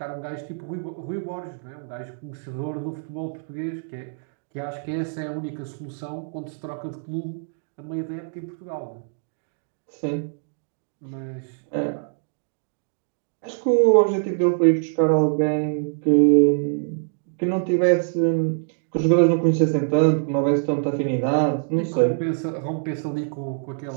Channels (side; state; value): left; silent; digital silence